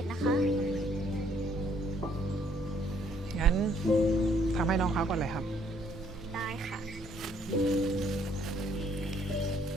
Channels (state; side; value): normal; both; correlation 0.66